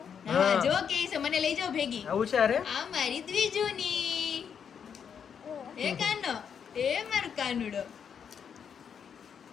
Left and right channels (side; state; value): right; quieter; 7.4 dB